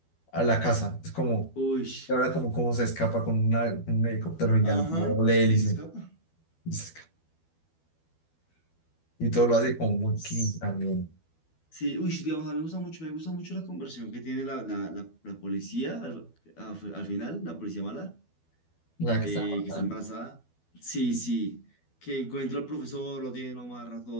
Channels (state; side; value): late; right; 12 ms